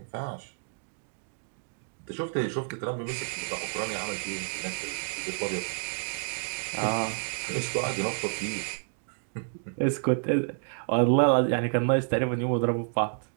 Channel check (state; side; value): silent; left; digital silence